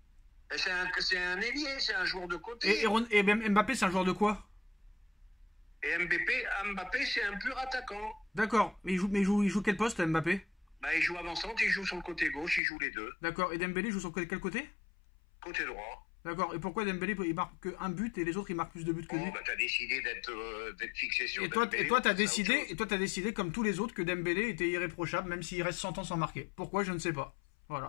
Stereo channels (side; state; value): right; drops out; at 12.6 s